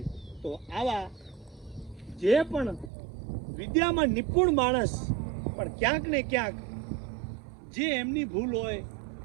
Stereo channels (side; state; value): left; drops out; at 2.9 s